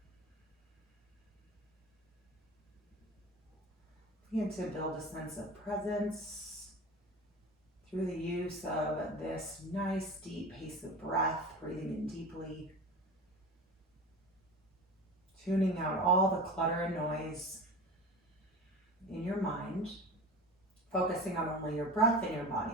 Begin to build a sense of presence through the use of this nice deep pace of breath, breathing in deeply, tuning out all the clutter and noise in your mind, focusing on only your breath and your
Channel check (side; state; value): both; normal; correlation 0.32